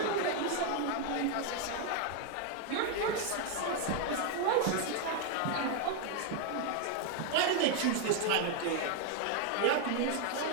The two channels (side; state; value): both; different; correlation 0.01